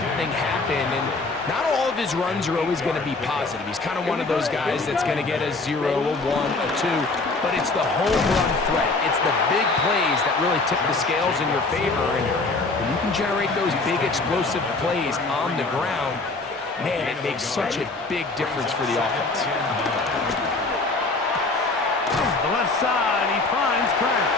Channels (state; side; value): quieter; right; 3.5 dB